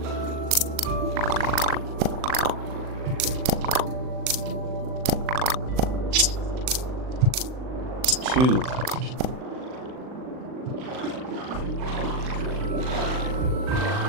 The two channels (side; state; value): left; late; 39 ms